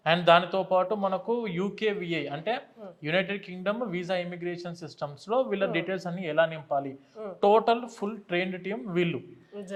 అండ్ దానితో పాటు మనకు UKVI అంటే United Kingdom visa immigration systems లో వీళ్ళ డీటెయిల్స్ అన్ని ఎలా నింపాలి, టోటల్ ఫుల్ ట్రైన్డ్ టీమ్ వీళ్ళు.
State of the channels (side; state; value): both; identical; correlation 1.00